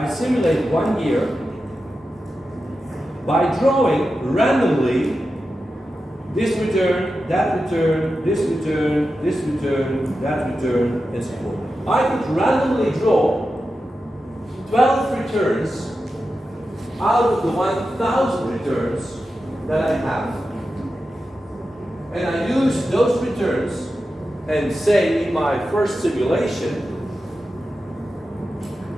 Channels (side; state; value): both; normal; correlation 0.91